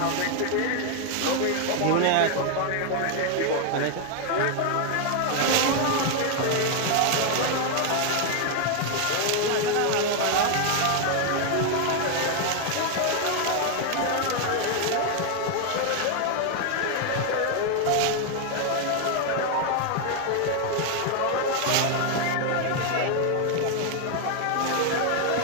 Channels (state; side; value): different; both; correlation 0.01